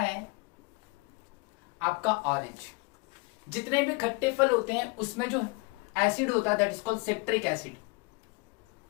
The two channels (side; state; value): right; quieter; 28.1 dB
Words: आपका ऑरेंज, जितने भी खट्टे फल होते हैं उसमें जो एसिड होता है that is called citric acid.